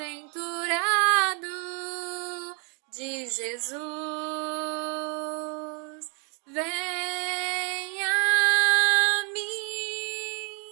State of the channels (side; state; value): left; quieter; 36.5 dB